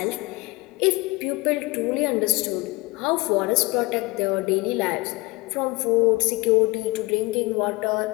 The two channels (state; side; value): quieter; right; 23.4 dB